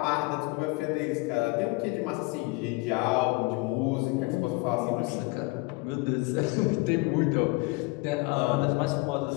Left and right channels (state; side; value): quieter; right; 25.7 dB